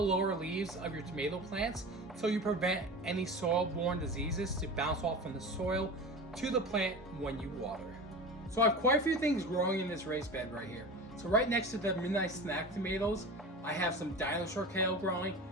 lower leaves of your tomato plants so you prevent any soil-borne diseases to bounce off from the soil to the plant when you water. So I have quite a few things growing in this raised bed right here. So right next to the Midnight Snack tomatoes, I have some Dinosaur Kale growing.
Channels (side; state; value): both; normal; correlation 0.31